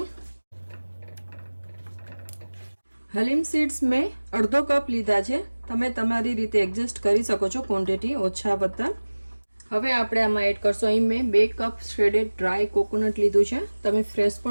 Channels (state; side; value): inverted; both; correlation -1.00